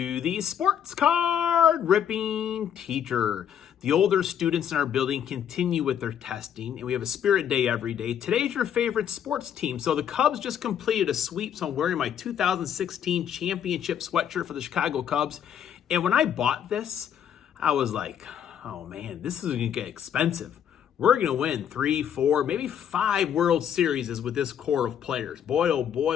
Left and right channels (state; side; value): quieter; right; 9.1 dB